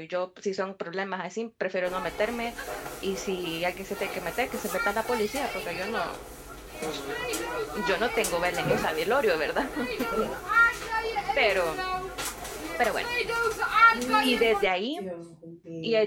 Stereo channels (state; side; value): identical; both; correlation 1.00